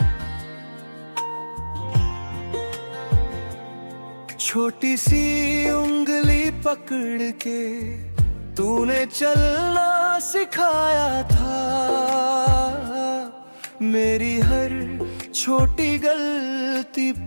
छोटी सी उंगली पकड़ के तूने चलना सिखाया था, मेरी हर छोटी गलती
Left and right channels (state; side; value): inverted; both; correlation -1.00